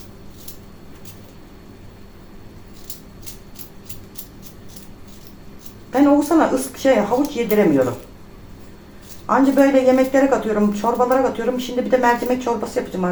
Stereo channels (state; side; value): identical; both; correlation 1.00